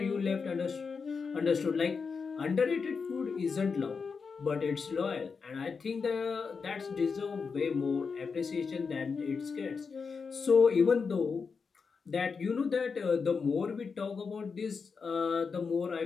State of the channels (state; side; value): quieter; right; 5.3 dB